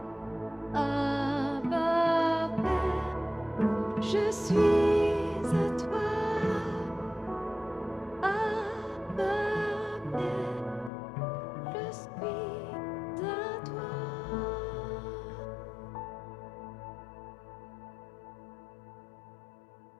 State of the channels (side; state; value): right; drops out; at 10.9 s